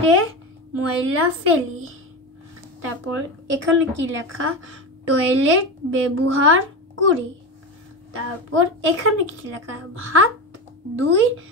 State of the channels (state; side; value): normal; both; correlation 0.21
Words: ময়লা ফেলি। তারপর এখানে কি লেখা? টয়লেট ব্যবহার করি। তারপর এখানে কি লেখা? হাত ধুই